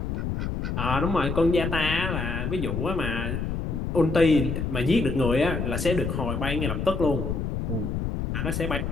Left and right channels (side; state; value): left; noise; rumble, 2 dB below the sound